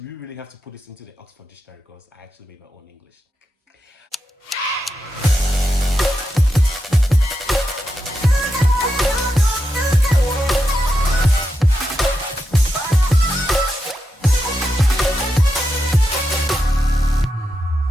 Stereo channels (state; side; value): normal; both; correlation 0.87